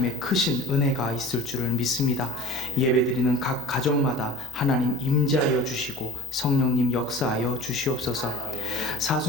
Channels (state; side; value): normal; both; correlation 0.42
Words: 크신 은혜가 있을 줄을 믿습니다. 예배드리는 각 가정마다 하나님 임재하여 주시고 성령님 역사하여 주시옵소서.